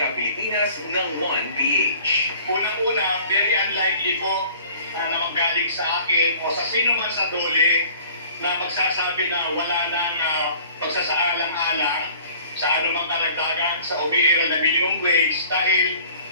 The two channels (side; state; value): both; inverted; correlation -0.50